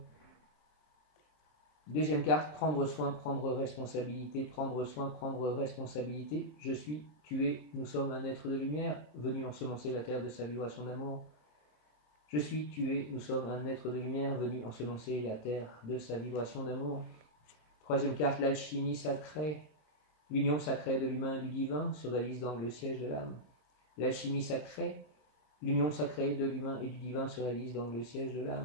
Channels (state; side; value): late; right; 26 ms